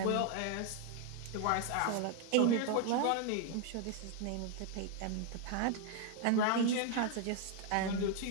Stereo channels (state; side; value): different; both; correlation 0.01